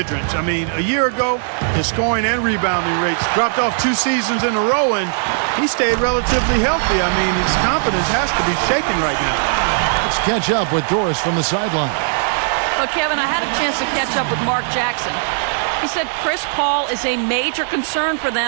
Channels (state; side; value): silent; left; digital silence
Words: I mean, a year ago, his scoring and rebounding rates dropped off 2 seasons in a row, and he stayed relatively healthy. I mean, his confidence has to be shaken right now. Let's catch up with Doris from the sideline. Well, Kevin, I had a chance to catch up with Mark Jackson. He said Chris Paul is a major concern for